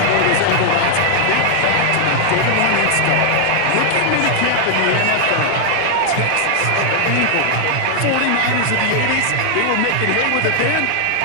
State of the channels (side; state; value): both; different; correlation 0.00